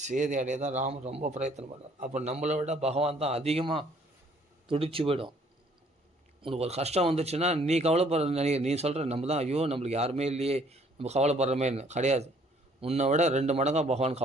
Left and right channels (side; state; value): both; normal; correlation 0.61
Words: சீதை அடைய தான் ராமர் ரொம்ப பிரயத்தனம் பண்ணார். அப்போ நம்மளை விட பகவான் தான் அதிகமாக துடிச்சு போயிடும். உனக்கு ஒரு கஷ்டம் வந்துச்சுன்னா நீ கவலைப்படுற, நீ சொல்கிற நம்ம தான் ஐயோ நம்மளுக்கு யாருமே இல்லையே, நம்ம கவலைப்படுறமேன்னு கிடையாது. உன்னை விட 2 மடங்காக பகவான்